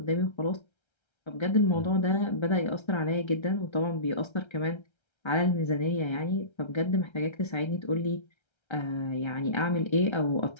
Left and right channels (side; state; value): right; late; 1.3 ms